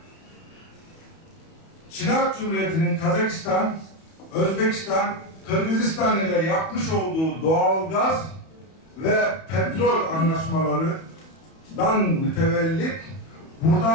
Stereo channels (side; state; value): right; late; 31 ms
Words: Çin Halk Cumhuriyeti'nin Kazakistan, Özbekistan, Kırgızistan ile yapmış olduğu doğalgaz ve petrol anlaşmalarından mütevellit